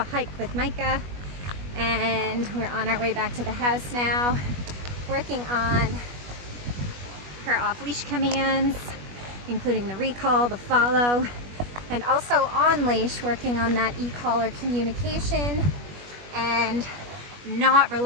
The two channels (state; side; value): late; left; 21 ms